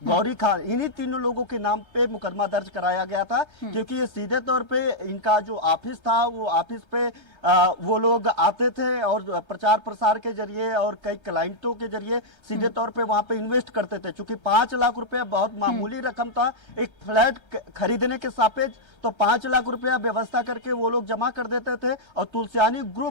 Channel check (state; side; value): late; right; 1.3 ms